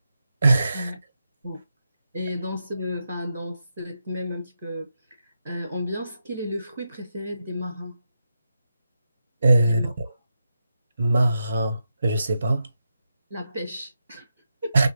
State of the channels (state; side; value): inverted; both; correlation -0.87